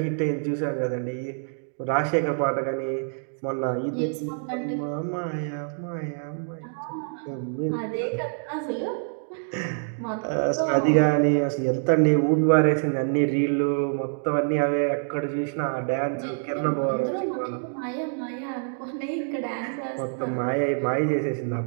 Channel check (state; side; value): silent; left; digital silence